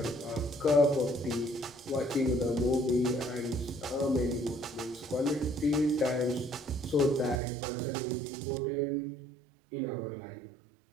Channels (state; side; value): drops out; left; at 7.4 s